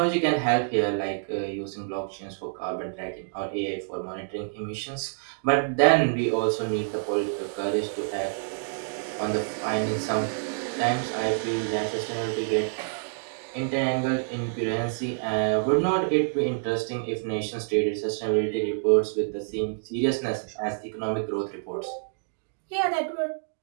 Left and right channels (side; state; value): left; silent; digital silence